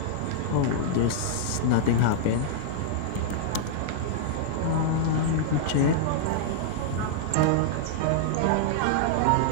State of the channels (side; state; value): both; different; correlation -0.01